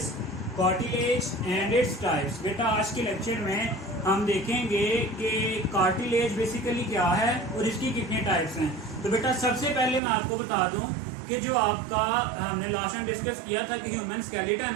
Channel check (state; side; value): drops out; left; at 10.0 s